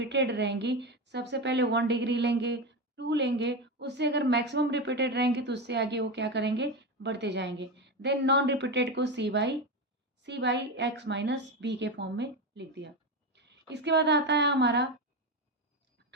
रहेंगी, सबसे पहले 1 डिग्री लेंगे, 2 लेंगे, उससे अगर मैक्सिमम रिपीटेड रहेंगे तो उससे आगे वो क्या करेंगे, बढ़ते जाएंगे। देन नॉन रिपीटेड को सी बाई एक्स माइनस बी के फॉर्म में लिख दिया। इसके बाद आता है हमारा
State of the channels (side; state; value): both; normal; correlation 0.16